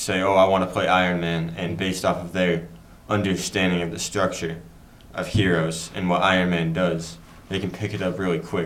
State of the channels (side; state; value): both; identical; correlation 1.00